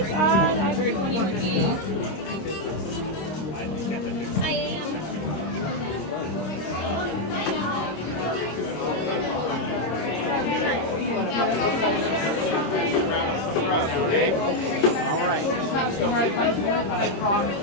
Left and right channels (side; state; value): right; late; 26 ms